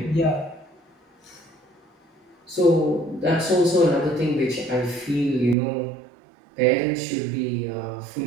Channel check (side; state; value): left; drops out; at 5.6 s